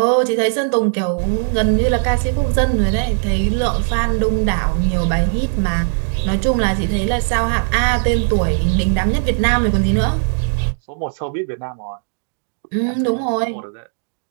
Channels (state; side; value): silent; left; digital silence